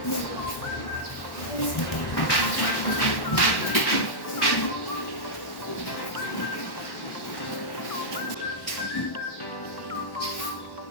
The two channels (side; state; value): right; late; 1.1 ms